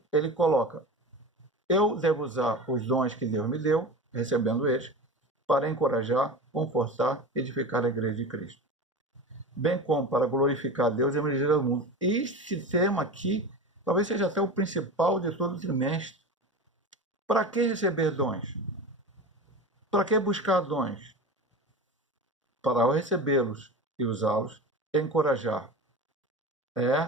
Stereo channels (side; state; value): both; normal; correlation 0.30